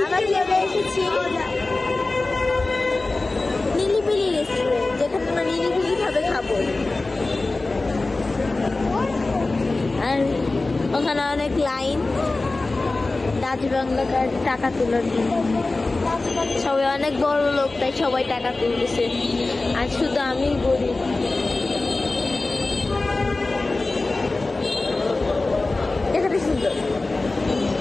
আমরা চলে এসেছি নিলিবিলি রেস্টুরেন্ট, যেখানে আমরা নিলিবিলি ভাবে খাবো। আর ওখানে অনেক লাইন, ডাচ বাংলা কার্ড টাকা তোলার জন্য। সবাই অনেক বড় লোক, তাই সবাই টাকা তুলতেছে, আর শুধু আমি গরিব। এখানে সুন্দর,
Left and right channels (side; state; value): right; quieter; 3.3 dB